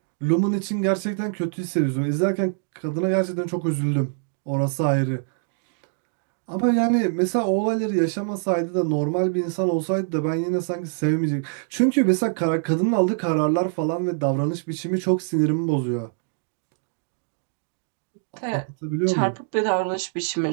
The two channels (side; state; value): left; silent; digital silence